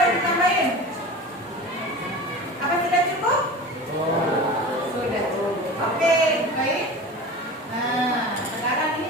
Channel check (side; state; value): both; normal; correlation 0.34